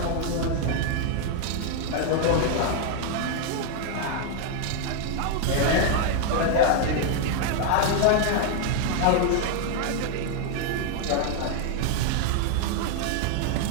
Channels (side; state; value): both; different; correlation 0.00